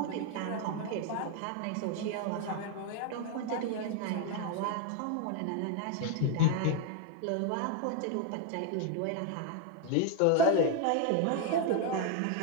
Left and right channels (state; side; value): different; both; correlation 0.01